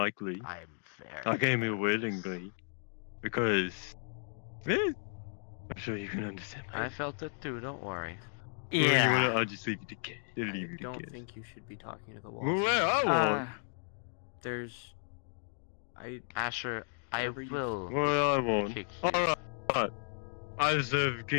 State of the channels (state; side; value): silent; right; 55 dB below the other